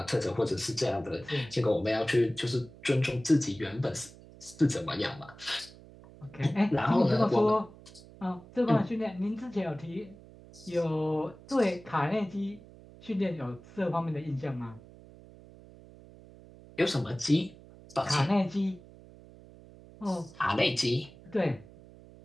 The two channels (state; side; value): noise; right; hum, 21 dB below the sound